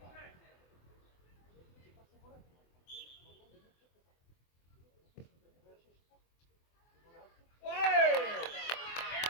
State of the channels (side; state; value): right; late; 24 ms